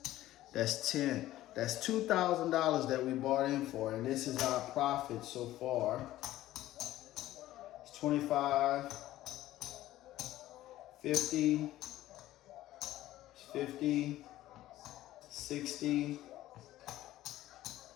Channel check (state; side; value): quieter; right; 14.9 dB